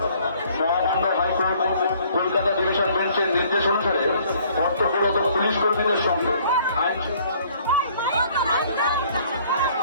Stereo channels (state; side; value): inverted; both; correlation -0.59